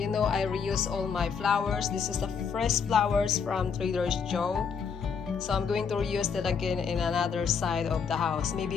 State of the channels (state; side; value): quieter; right; 6.3 dB